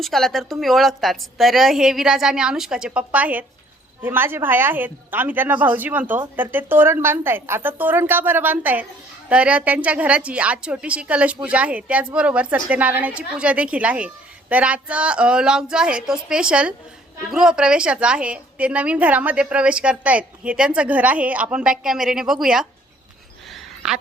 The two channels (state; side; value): normal; both; correlation 0.60